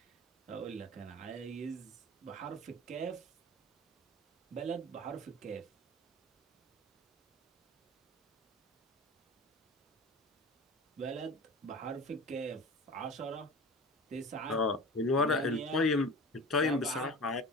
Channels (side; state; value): both; normal; correlation 0.35